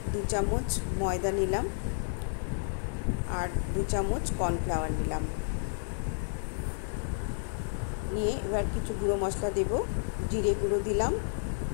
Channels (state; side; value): silent; right; digital silence